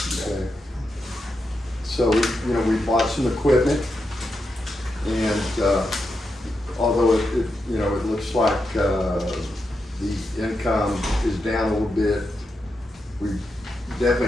Okay. So we bought some equipment, and although it looks like the income is down a little bit, we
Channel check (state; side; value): normal; both; correlation 0.86